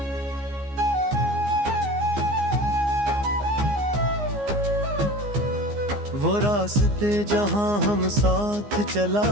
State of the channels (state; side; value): late; left; 15 ms